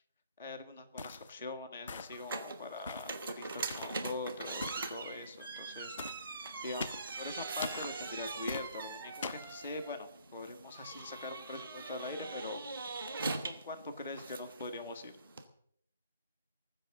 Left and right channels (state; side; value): inverted; both; correlation -0.60